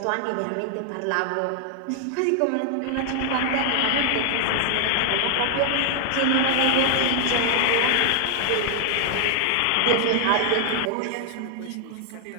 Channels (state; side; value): different; both; correlation 0.00